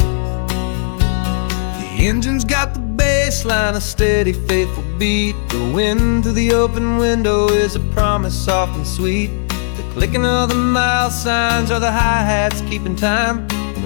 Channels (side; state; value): right; silent; 66 dB below the other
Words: The engine's got the baseline, a steady, faithful beat. The wind through the open window is a promise soft and sweet. The clicking of the mile signs are the hi-hats keeping time, and